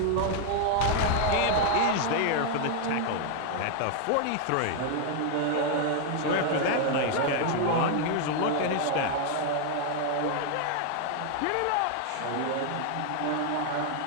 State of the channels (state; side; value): different; both; correlation 0.00